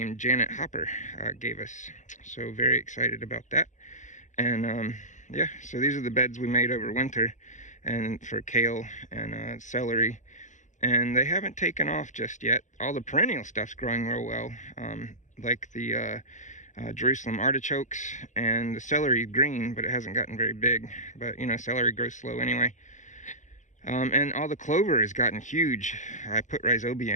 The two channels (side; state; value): right; late; 0.35 ms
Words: Janet Hopper gave us. So very excited about that. And yeah, so these are the beds we made over winter, and for kale and celery. And they haven't taken off just yet. All the perennial stuff's growing real well, like the Jerusalem artichokes, and the celery green, but it hasn't gotten very big. But you know, celery grows slow anyway. And all the clover has gotten huge. I put rhizobia